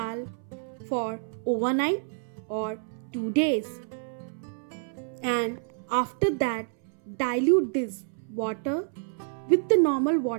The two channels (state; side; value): silent; left; 59 dB below the other